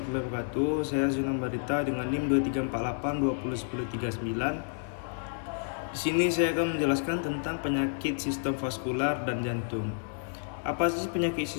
wabarakatuh. Saya Zunan Barita dengan NIM 2348201039. Di sini saya akan menjelaskan tentang penyakit sistem vaskular dan jantung. Apa sih penyakit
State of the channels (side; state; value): right; silent; digital silence